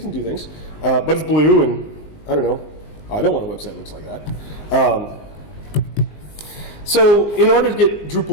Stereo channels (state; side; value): late; right; 19 ms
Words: and do things. But it's blue, and I don't know. I don't want a website that looks like that. So in order to get